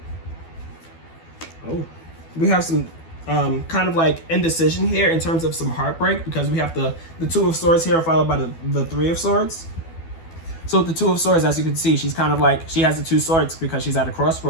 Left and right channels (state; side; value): late; right; 12 ms